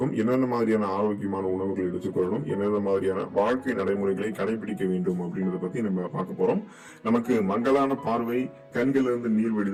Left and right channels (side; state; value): both; identical; correlation 1.00